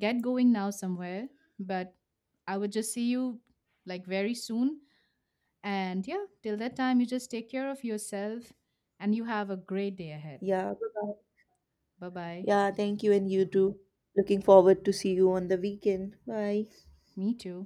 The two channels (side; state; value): both; identical; correlation 1.00